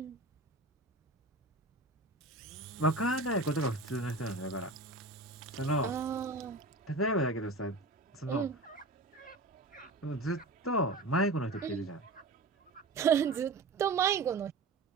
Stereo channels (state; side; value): quieter; left; 3.1 dB